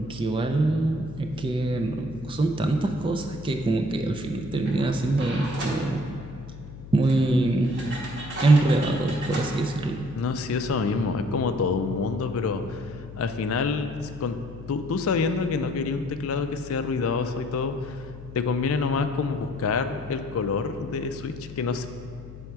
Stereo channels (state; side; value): noise; left; hum, 14 dB below the sound